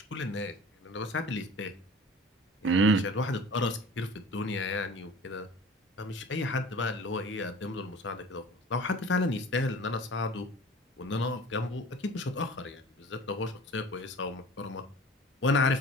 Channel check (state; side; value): normal; both; correlation 0.42